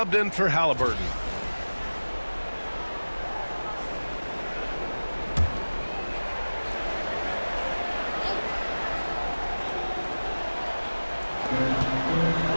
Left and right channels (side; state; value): both; inverted; correlation -1.00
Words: in for Halliburton.